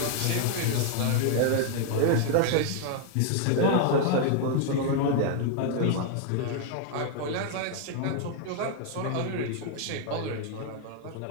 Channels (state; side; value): different; both; correlation 0.00